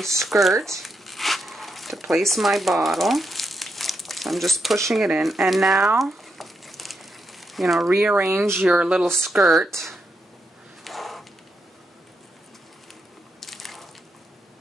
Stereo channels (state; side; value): normal; both; correlation 0.83